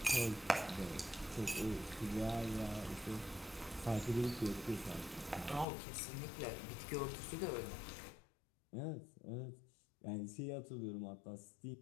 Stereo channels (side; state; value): right; drops out; at 5.7 s